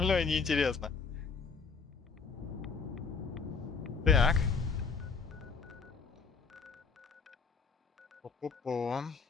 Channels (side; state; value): right; quieter; 5.1 dB